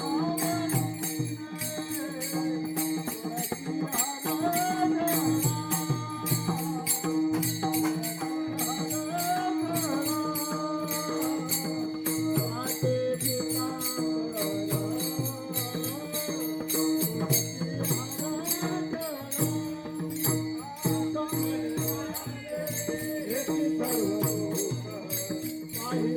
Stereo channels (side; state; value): both; identical; correlation 1.00